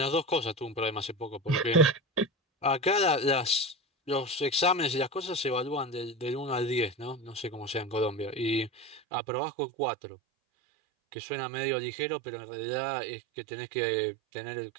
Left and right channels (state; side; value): drops out; left; at 9.0 s